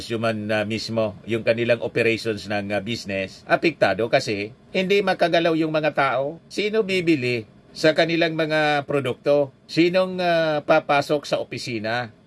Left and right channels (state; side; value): identical; both; correlation 1.00